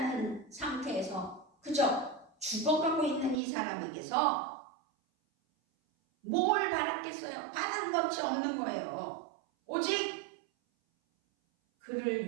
상태에서 그저 죽어가고 있는 이 사람에게서 뭘 바랐겠어요? 바란 것이 없는 거예요. 오직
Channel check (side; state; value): left; drops out; at 3.4 s